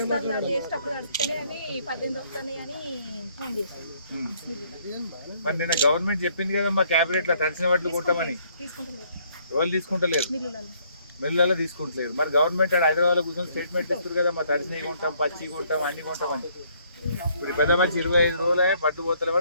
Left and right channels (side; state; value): both; inverted; correlation -0.66